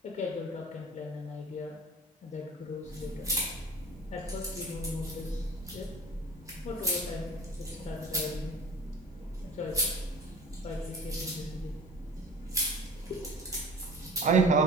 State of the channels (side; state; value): both; normal; correlation 0.42